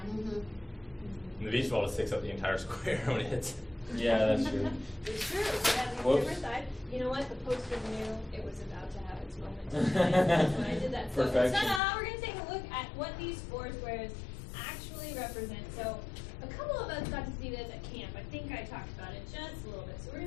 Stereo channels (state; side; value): drops out; right; at 11.8 s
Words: and the beach ball just takes up the entire square when it hits. Yeah, that's true. It's true. It has a Whoops. different side. You know what? The poster knew it was about to have its moment. That's when I did that. So, Perfection. ta-da! We're going to take a look at what these four squares actually represent. So, a couple of us got to see this at camp. I think I talked about it just a little bit. So, we're